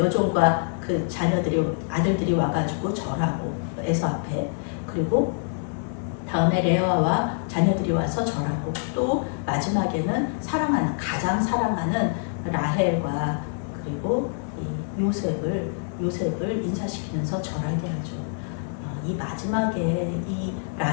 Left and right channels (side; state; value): right; silent; digital silence